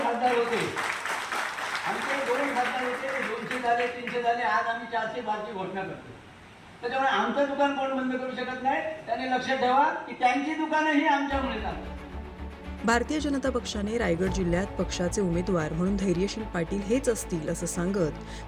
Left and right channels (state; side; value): identical; both; correlation 1.00